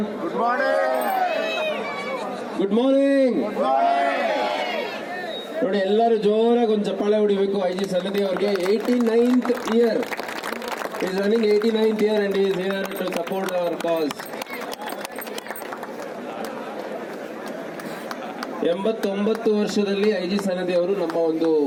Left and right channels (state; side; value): identical; both; correlation 1.00